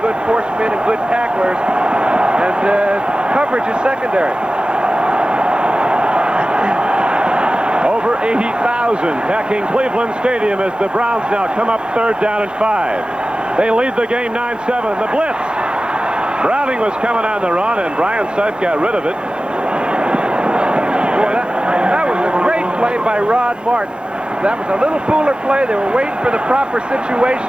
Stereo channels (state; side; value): late; left; 0.051 ms